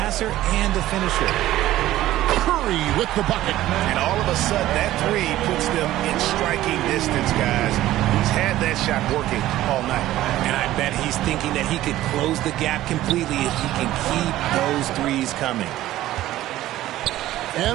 and a finisher. Curry with the bucket. And all of a sudden, that 3 puts them in striking distance, guys. He's had that shot working all night. And I bet he's thinking that he could close the gap completely if he can keep those 3s coming.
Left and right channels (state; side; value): quieter; left; 14.8 dB